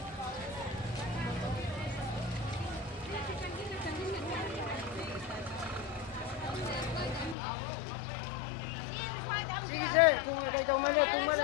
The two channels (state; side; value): drops out; right; at 7.4 s